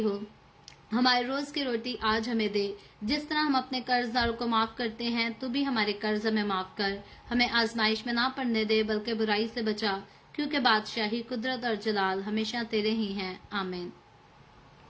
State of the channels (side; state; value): both; identical; correlation 1.00